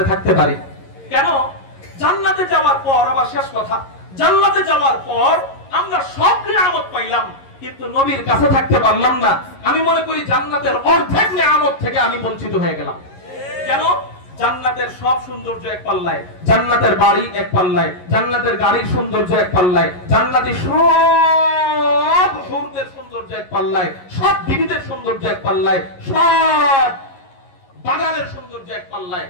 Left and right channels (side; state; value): right; late; 11 ms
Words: থাকতে পারি কেন জান্নাতে যাওয়ার পর আবার শেষ কথা জান্নাতে যাওয়ার পর আমরা সব নিয়ামত পাইলাম কিন্তু নবীর কাছে থাকতে পারলাম না আমি মনে করি জান্নাতের অর্ধেক নিয়ামত থেকে আমি বঞ্চিত হয়ে গেলাম কেন জান্নাতের সব সৌন্দর্য এক পাল্লায় জান্নাতের বাড়ি এক পাল্লায় জান্নাতের গাড়ির সৌন্দর্য এক পাল্লায় জান্নাতি সব হুরদের সৌন্দর্য এক পাল্লায় সব বিবিদের সৌন্দর্য এক পাল্লায় সব বাগানের সৌন্দর্য এক পাল্লায়